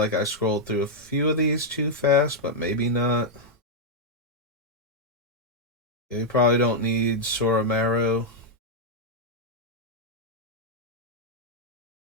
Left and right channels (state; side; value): normal; both; correlation -0.03